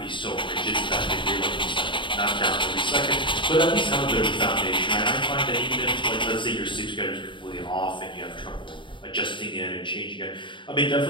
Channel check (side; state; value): right; late; 0.24 ms